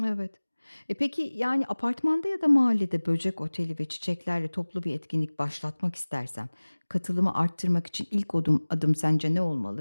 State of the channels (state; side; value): inverted; both; correlation -1.00